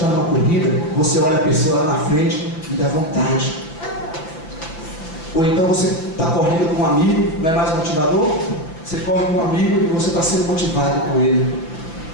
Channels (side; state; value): right; late; 6.0 ms